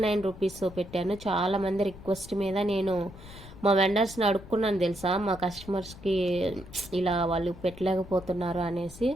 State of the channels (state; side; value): noise; left; rumble, 16 dB below the sound